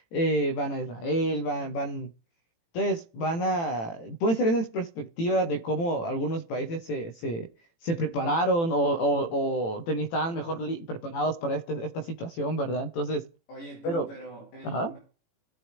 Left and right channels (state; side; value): late; right; 18 ms